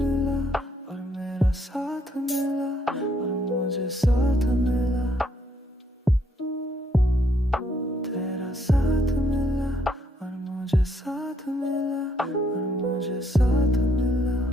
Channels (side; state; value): both; normal; correlation 0.71